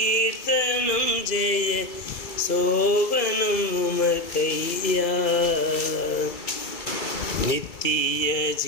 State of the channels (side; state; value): right; late; 2.3 ms